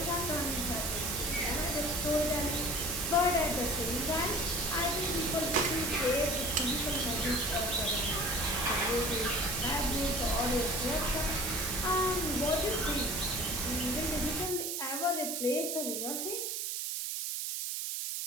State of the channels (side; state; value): right; noise; hiss, 2 dB below the sound